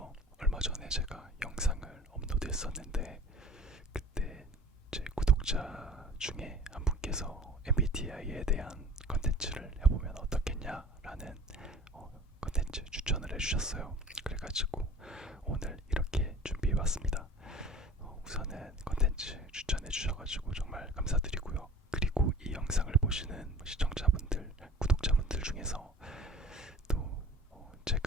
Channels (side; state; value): both; normal; correlation 0.44